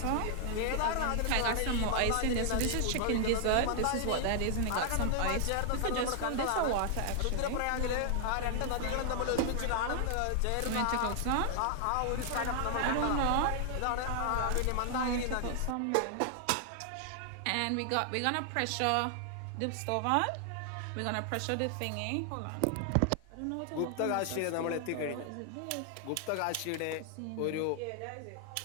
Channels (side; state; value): both; different; correlation 0.00